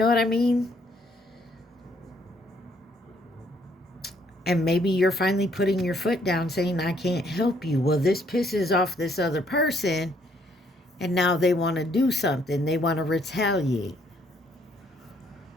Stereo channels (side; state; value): both; normal; correlation 0.68